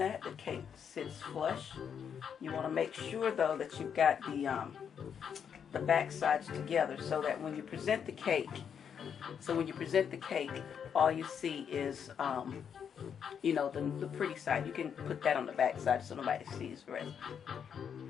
the cake sits flush. You want to make sure, though, that you've got the back sides together, so that when you present the cake, all you see is the pretty side. You can put that on the back side so nobody sees the rest.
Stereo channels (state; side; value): quieter; right; 7.6 dB